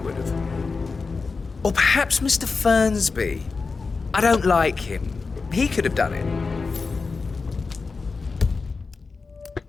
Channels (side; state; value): right; quieter; 4.4 dB